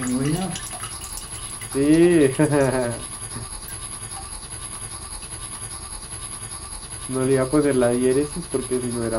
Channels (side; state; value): both; identical; correlation 1.00